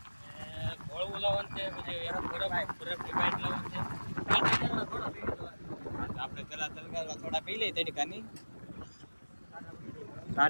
ઘોળવું લાવવાનું છે, પછી બરફની પાઇપ લાવવાનું છે। આપણે પેલા તલગારવા થોડા પી લઈએ તડકાની,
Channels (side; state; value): both; inverted; correlation -1.00